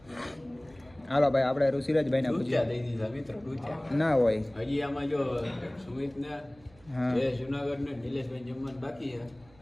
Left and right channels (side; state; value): right; noise; hum, 27 dB below the sound